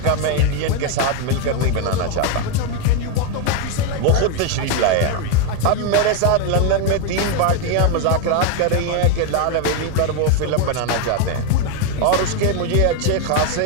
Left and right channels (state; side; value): different; both; correlation 0.01